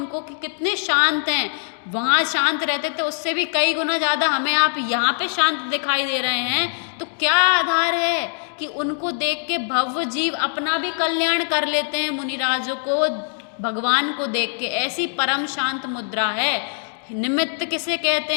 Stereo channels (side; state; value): right; silent; 64 dB below the other